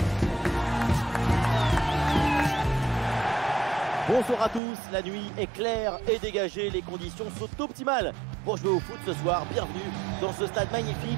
Bonsoir à tous, la nuit est claire et dégagée, les conditions sont optimales pour jouer au foot ce soir. Bienvenue dans ce stade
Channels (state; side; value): drops out; left; at 4.6 s